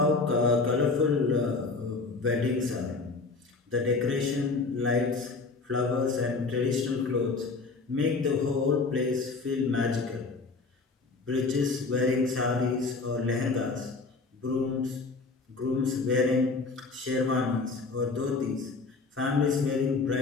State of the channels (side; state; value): right; quieter; 4.0 dB